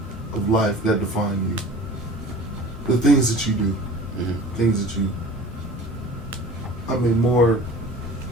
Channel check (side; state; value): both; normal; correlation 0.42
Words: of life that define you. the things that you do, things that you. I mean, more